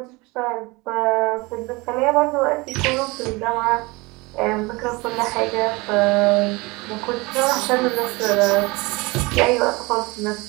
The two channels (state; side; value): quieter; left; 24.3 dB